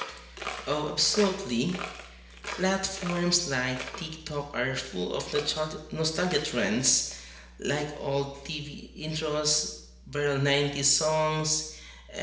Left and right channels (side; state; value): both; identical; correlation 1.00